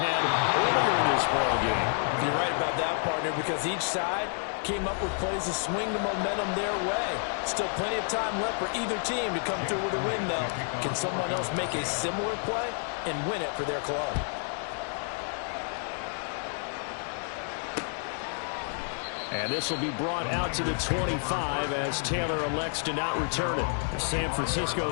earlier in this ball game. You're right about that, partner, because each side came up with plays to swing the momentum their way. Still plenty of time left for either team to come through with a win, though. Can someone else make a similar play and win it for their club? And this will be brought out to the 25 as Taylor elects to not return it. San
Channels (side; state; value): right; silent; 58 dB below the other